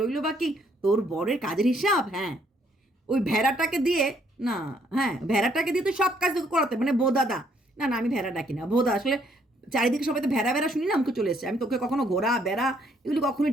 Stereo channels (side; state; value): both; normal; correlation 0.68